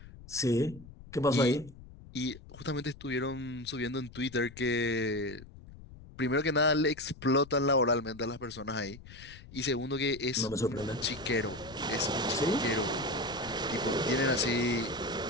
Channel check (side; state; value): left; noise; rumble, 18 dB below the sound